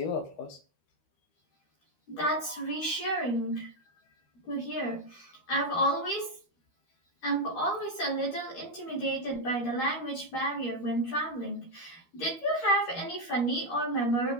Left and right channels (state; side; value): late; right; 13 ms